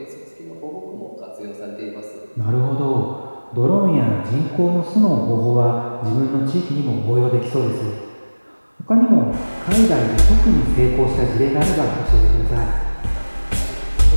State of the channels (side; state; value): both; inverted; correlation -1.00